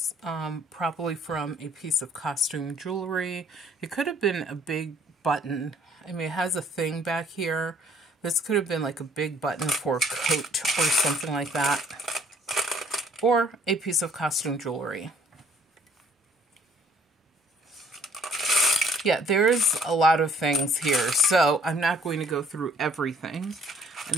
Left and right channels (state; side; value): normal; both; correlation 0.60